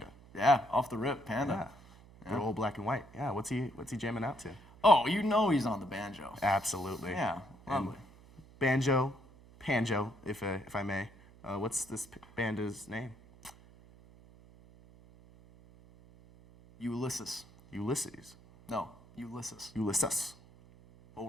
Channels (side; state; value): right; noise; hum, 23 dB below the sound